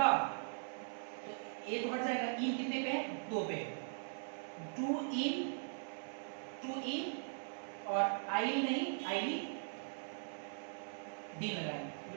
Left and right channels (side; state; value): left; silent; digital silence